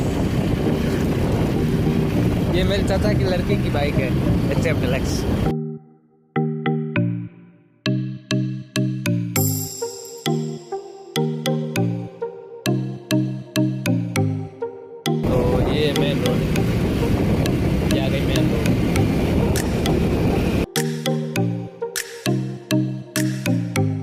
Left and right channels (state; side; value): identical; both; correlation 1.00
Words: ये मेरे चाचा की लड़की की बाइक है, HF डिलक्स। तो ये मेन रोड, ये आ गई मेन रोड।